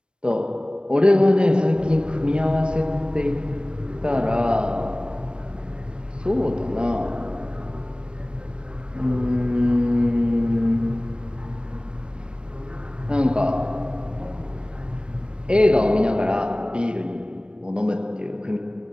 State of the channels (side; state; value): left; late; 0.055 ms